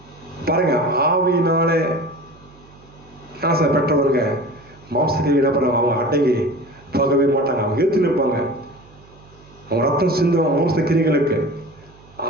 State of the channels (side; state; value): right; noise; hum, 25 dB below the sound